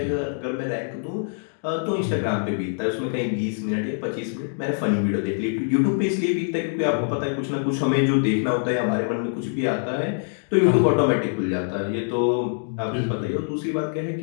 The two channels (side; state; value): right; silent; digital silence